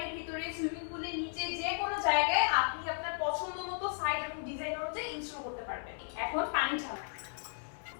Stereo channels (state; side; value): silent; right; 54 dB below the other